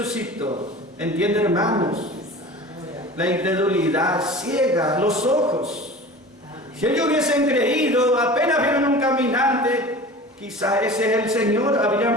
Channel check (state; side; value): normal; both; correlation 0.37